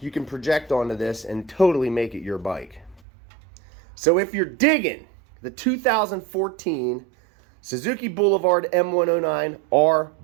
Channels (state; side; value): drops out; left; at 3.0 s